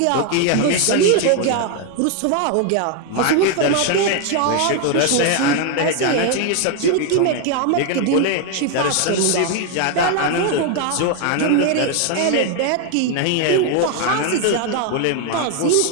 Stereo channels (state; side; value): different; both; correlation 0.01